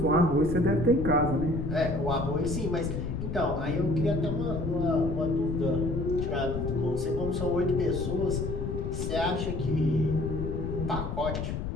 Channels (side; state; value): left; noise; rumble, 4 dB below the sound